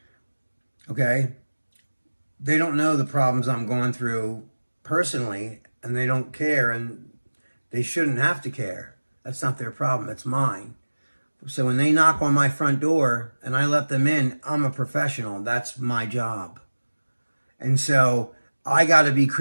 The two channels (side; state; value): both; inverted; correlation -1.00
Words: Okay? They don't know the problems I'm going through personally, and they don't care, and they shouldn't have to care. That's not their problem. It's mine. So when they knock on my front door and I let them in, I'm a professional. That's my job. And so I got to be